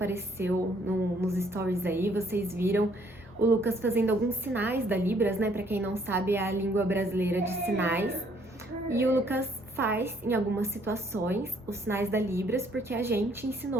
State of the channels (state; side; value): normal; both; correlation 0.65